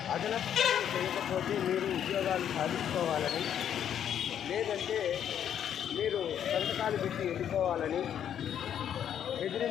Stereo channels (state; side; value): quieter; right; 9.4 dB